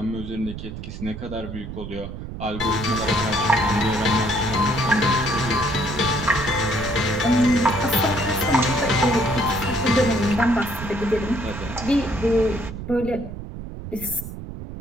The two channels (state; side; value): noise; right; rumble, 10 dB below the sound